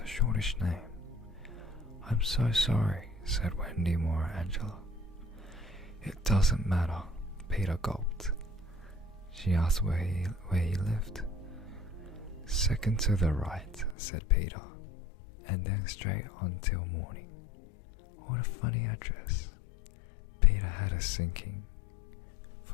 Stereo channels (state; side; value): drops out; right; at 14.0 s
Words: shortish name. I'm so sorry, said Wendy more Angela. It doesn't matter, Peter gulped. She asked where he lived. Second to the right, said Peter, and then straight on till morning. What a funny address. Peter had a sinking.